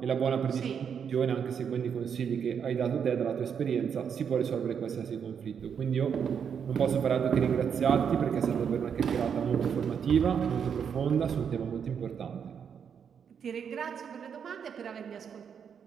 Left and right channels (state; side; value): quieter; left; 7.3 dB